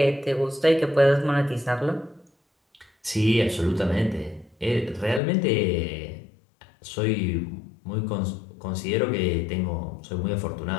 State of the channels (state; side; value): drops out; right; at 5.2 s